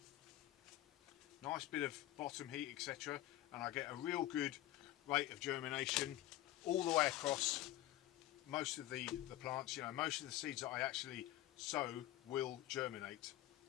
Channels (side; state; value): right; quieter; 15.1 dB